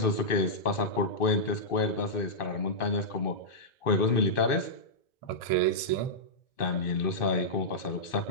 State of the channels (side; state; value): right; late; 2.6 ms